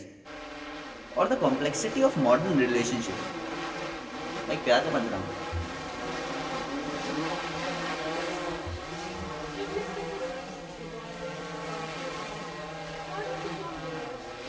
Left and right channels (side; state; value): both; identical; correlation 1.00